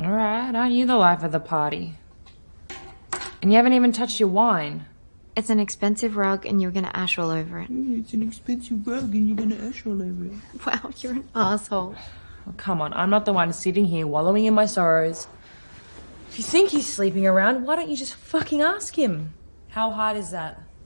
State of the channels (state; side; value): inverted; both; correlation -1.00